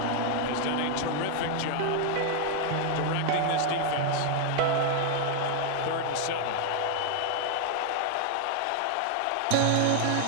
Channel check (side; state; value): both; different; correlation 0.00